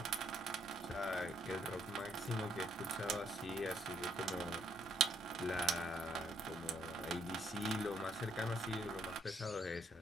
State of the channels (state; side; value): normal; both; correlation 0.70